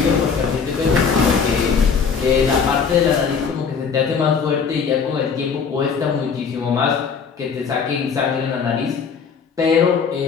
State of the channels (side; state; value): right; quieter; 6.0 dB